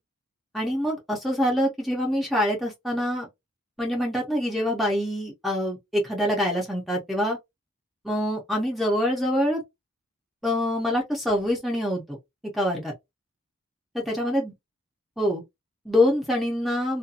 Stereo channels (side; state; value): both; normal; correlation 0.71